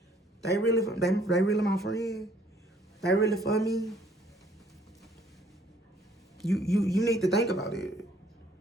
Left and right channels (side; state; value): both; normal; correlation 0.62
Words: They really my friend. They really for me. You need to think about it.